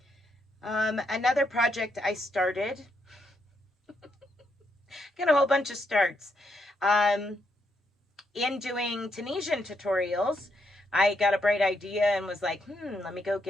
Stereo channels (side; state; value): both; normal; correlation 0.78